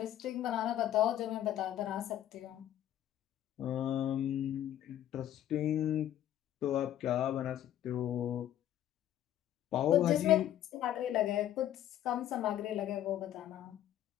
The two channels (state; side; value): quieter; right; 11.8 dB